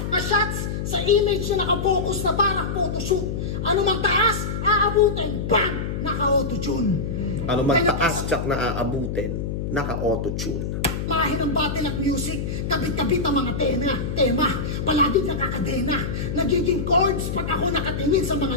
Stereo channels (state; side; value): noise; left; hum, 3 dB below the sound